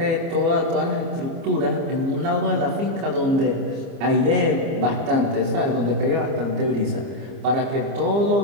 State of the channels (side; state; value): left; late; 30 ms